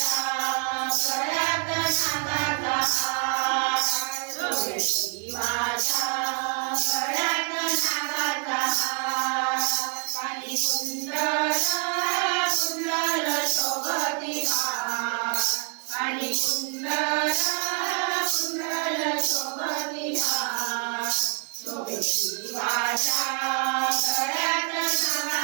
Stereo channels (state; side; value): quieter; left; 37.4 dB